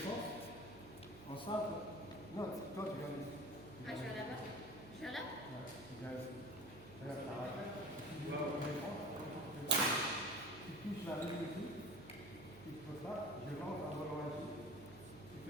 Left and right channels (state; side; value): noise; right; hum, 16 dB below the sound